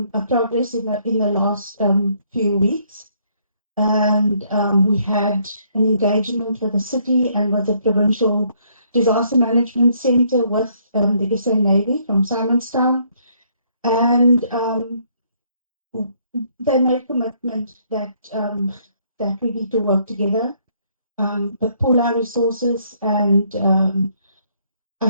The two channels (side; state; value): both; inverted; correlation -0.68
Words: progress in the last few weeks, and we had an engagement with the city and with the Provincial Disaster Management Centre with the SA Navy from Simonstown, and they made commitment that that we need to work together, but pool our resources, and